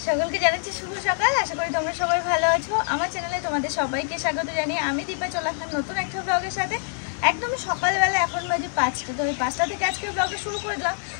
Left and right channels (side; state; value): right; silent; digital silence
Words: সকলকে জানাচ্ছি শুভ সকাল। আশা করি তোমরা সবাই ভালো আছো। আমার চ্যানেলে তোমাদের সবাইকে স্বাগত জানিয়ে আমি দীপা চলে আসলাম নতুন একটা ব্লগের সাথে। একদম সকালবেলা, এখন বাজে 5টা। তো ওই 5টা থেকে আজকে ব্লগটা শুরু করে দিলাম।